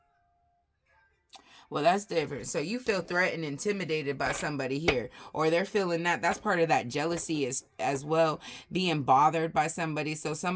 Well, that's different. So you feel threatened, intimidated by somebody here, or they're feeling that. That's part of that jealousy as well, being bothered by somebody. So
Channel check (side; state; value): both; identical; correlation 1.00